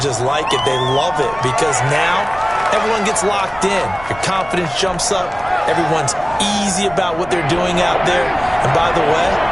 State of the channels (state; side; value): noise; right; rumble, 19 dB below the sound